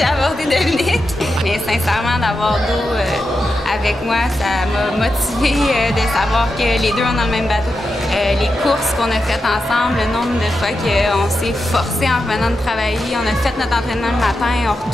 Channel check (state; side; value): normal; both; correlation 0.88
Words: abordé Dominique, mais sincèrement, d'avoir d'eau avec moi, ça m'a motivée de savoir que les deux, on est dans le même bateau. Les courses qu'on a faites ensemble, le nombre de fois qu'on s'est forcé en revenant de travailler, on a fait notre entraînement le matin, on